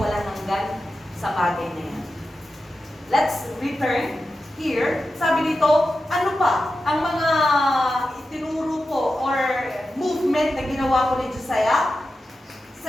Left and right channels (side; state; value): both; normal; correlation 0.91